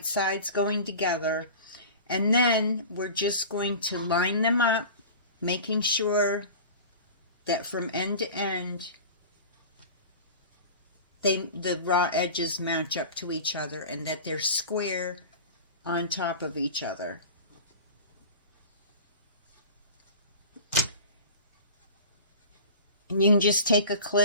sides going together, and then we're just going to line them up, making sure that from end to end the raw edges match up to each other and that they're square on top of each other. And you can just take a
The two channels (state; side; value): inverted; both; correlation -0.36